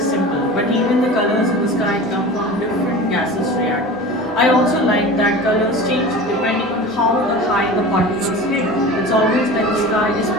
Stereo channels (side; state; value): both; normal; correlation 0.35